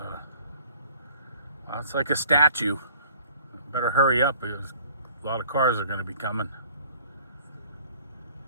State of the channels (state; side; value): inverted; both; correlation -0.55